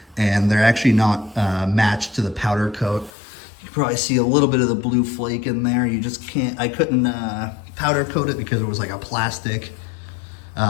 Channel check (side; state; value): right; drops out; at 3.1 s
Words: and they're actually not matched to the powder coat. You can probably see a little bit of the blue flake in there. You just can't, I couldn't powder coat it because it was like a plastic.